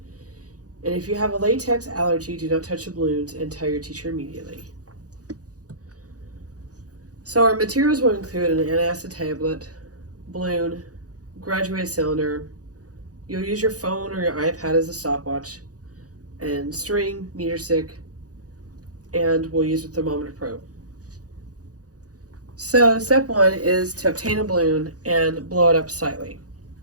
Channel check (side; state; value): left; late; 0.67 ms